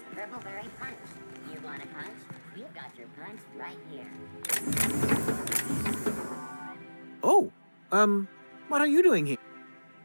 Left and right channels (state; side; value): inverted; both; correlation -1.00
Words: Purpleberry Punch. You want a punch? We've got your punch right here. Oh, what are you doing here?